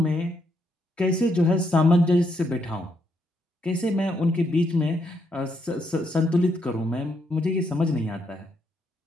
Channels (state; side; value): normal; both; correlation 0.76